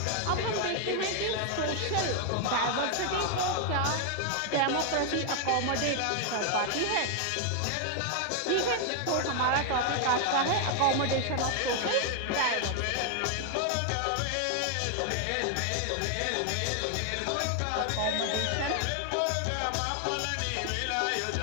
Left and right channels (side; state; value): both; different; correlation 0.00